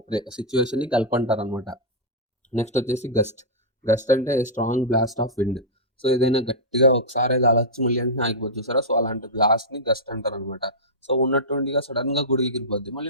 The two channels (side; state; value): both; normal; correlation -0.10